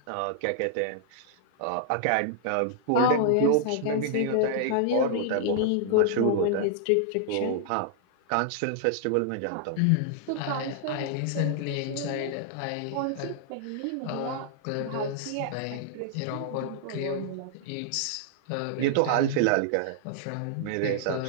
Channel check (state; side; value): different; both; correlation -0.01